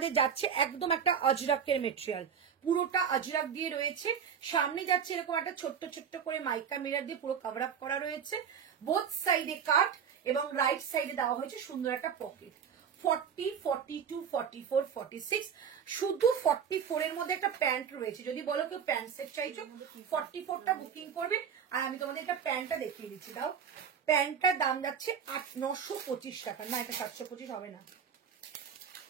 যাচ্ছে একদম একটা অজরাকের মেটেরিয়াল, পুরোটা অজরাক দিয়ে রয়েছে। সামনে যাচ্ছে এরকম একটা ছোট্ট ছোট্ট করে মাইকা মিরর দিয়ে পুরো কভার আপ করা রয়েছে। বোথ সাইডে কাট এবং রাইট সাইডে দেওয়া হয়েছে সুন্দর একটা পকেট। 40, 42, 44, 46, শুধু 44 এর মধ্যে একটা প্যান্ট রয়েছে। যদি বলো কেউ প্যান্ট সেট চাইছো, 44টা বুকিং করবে। আর আমি তোমাদের একটা প্যান্টটা দেখিয়ে দিচ্ছি, দাও। প্যান্টটার দাম যাচ্ছে 925 টাকা। না, এটা 725 হবে না,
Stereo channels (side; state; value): left; quieter; 7.4 dB